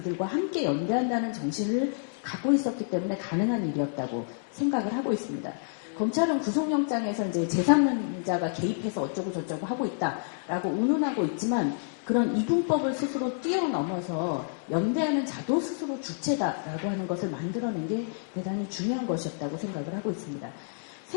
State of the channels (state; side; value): silent; right; digital silence